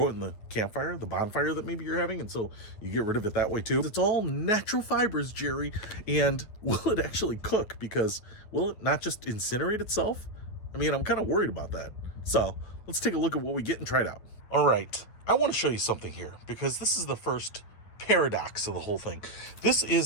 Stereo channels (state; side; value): late; right; 9.2 ms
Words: it in the campfire, the bonfire that maybe you're having, and so you get rid of it that way too? It's all natural fibers, Jerry, and will it actually cook? Because will it not just incinerate itself? I mean, I'm kind of worried about that. So let's take a look at what we get and try it out. All right. I want to show you something here because this is the first paradox of the whole thing. This